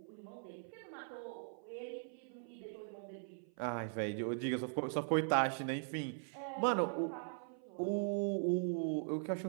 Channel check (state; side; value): silent; left; 51 dB below the other